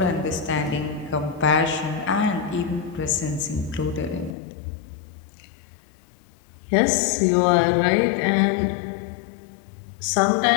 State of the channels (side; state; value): right; drops out; at 4.4 s